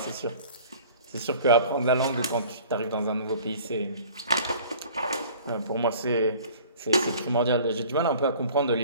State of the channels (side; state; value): both; inverted; correlation -0.48